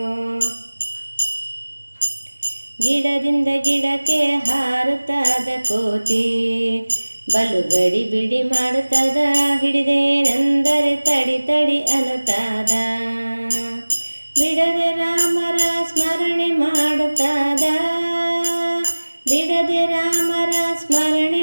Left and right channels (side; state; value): both; inverted; correlation -1.00